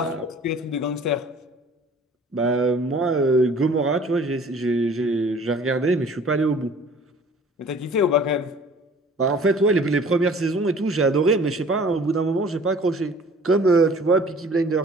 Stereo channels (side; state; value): both; normal; correlation 0.50